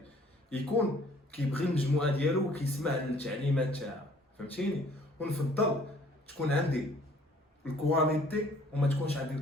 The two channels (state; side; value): normal; both; correlation 0.58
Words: يكون كيبغي المجموعه ديالو وكيسمع للتعليمات تاعها. فهمتيني؟ ونفضل تكون عندي الكواليتي وما تكونش عندي